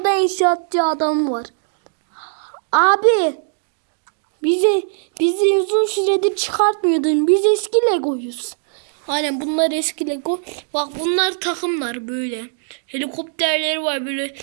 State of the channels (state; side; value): silent; left; digital silence